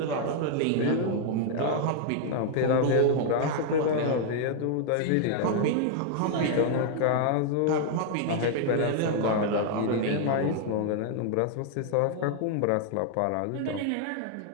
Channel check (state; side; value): different; both; correlation 0.00